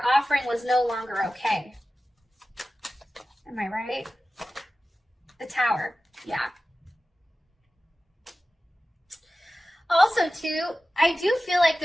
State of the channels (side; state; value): both; normal; correlation 0.95